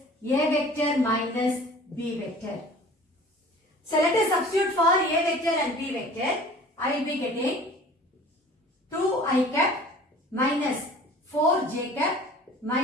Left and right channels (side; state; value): both; normal; correlation 0.46